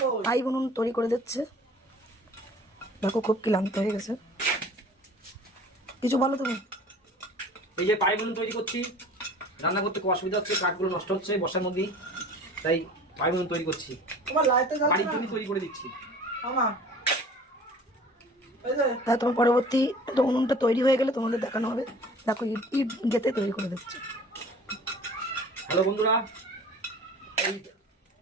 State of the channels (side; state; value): both; normal; correlation 0.45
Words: আই উনুন তৈরি করে দিচ্ছে। দেখো খুব ক্লান্ত হয়ে গেছে। কিছু বলো তুমি। এই যে পাই উনুন তৈরি করছি, রান্না করতে খুব অসুবিধা হচ্ছে, কাঠগুলো নষ্ট হচ্ছে বর্ষার মধ্যে, তাই পাই উনুন তৈরি করছি। বাড়ির জন্য তৈরি করে দিচ্ছি। তাই তোমার পরবর্তী উনুনটা তৈরি হয়ে গেলে তোমাদের দেখানো হবে। দেখো ইট ইট গেতে তৈরি করে দিচ্ছে। হ্যালো বন্ধুরা, এই